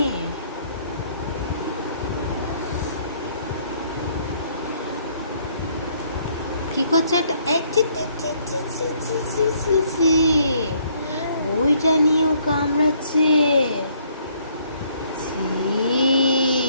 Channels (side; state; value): both; inverted; correlation -0.66